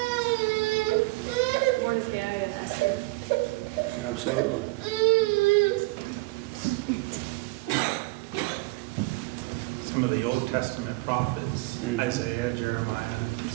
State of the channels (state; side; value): quieter; left; 23.7 dB